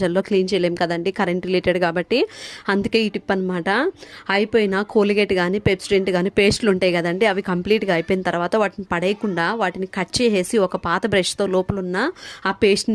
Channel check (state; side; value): identical; both; correlation 1.00